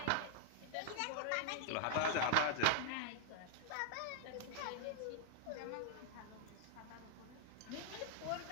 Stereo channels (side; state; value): both; different; correlation -0.01